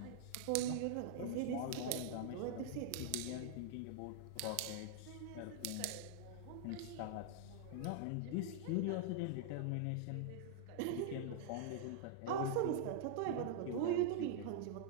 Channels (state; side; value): different; both; correlation -0.01